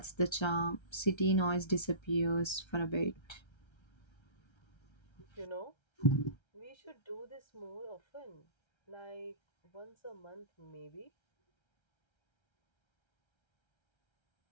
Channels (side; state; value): right; late; 1.3 ms